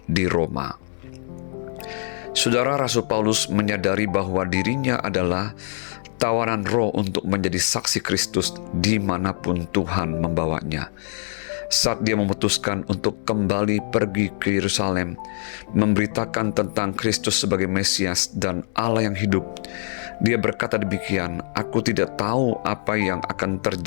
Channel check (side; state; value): right; silent; digital silence